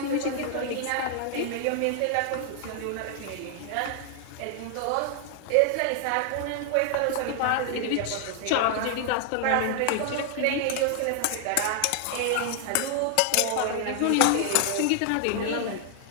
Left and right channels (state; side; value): different; both; correlation 0.00